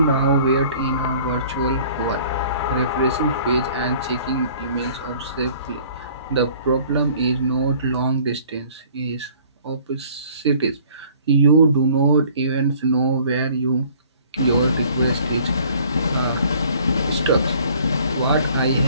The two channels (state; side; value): inverted; both; correlation -0.54